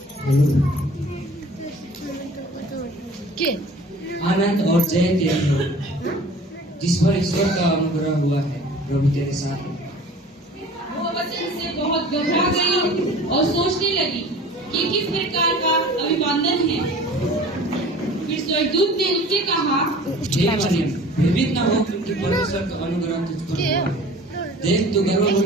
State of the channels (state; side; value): normal; both; correlation 0.45